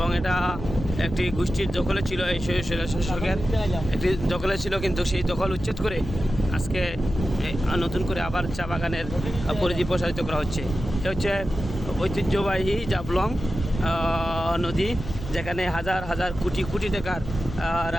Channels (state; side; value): noise; left; hum, 12 dB below the sound